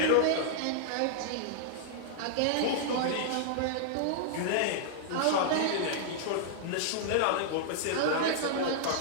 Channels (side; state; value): both; different; correlation -0.01